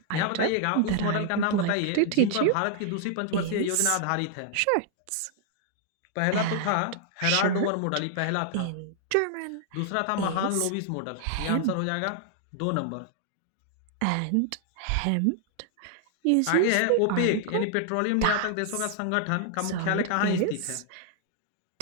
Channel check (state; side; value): different; both; correlation 0.00